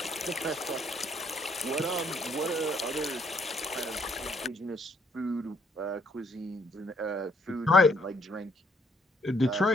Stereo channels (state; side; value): normal; both; correlation 0.68